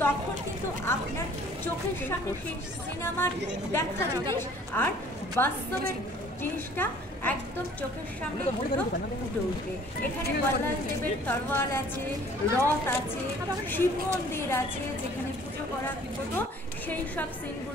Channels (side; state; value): both; normal; correlation 0.53